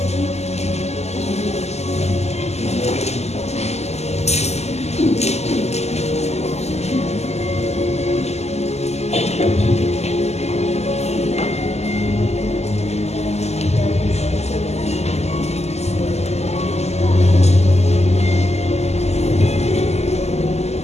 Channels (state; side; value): late; right; 0.32 ms